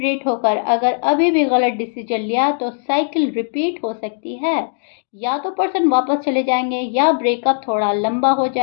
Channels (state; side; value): silent; right; digital silence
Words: होकर अगर अभी भी गलत डिसीजन लिया तो साइकिल रिपीट हो सकती है। या तो पर्सन वापस चले जाएँगे या ब्रेकअप थोड़ा लंबा हो